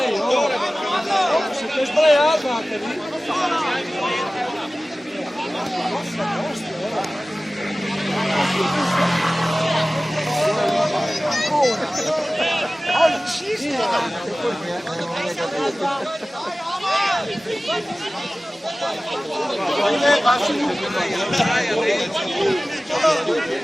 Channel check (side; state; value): both; normal; correlation 0.97